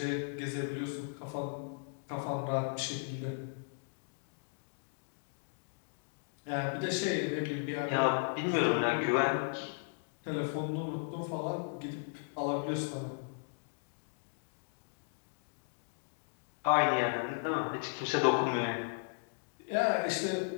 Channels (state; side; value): silent; right; digital silence